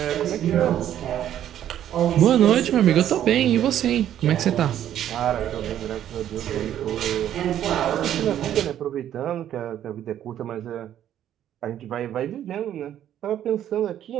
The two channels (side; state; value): left; quieter; 11.0 dB